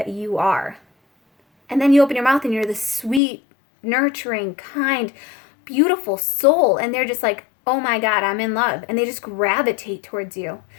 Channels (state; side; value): drops out; right; at 3.2 s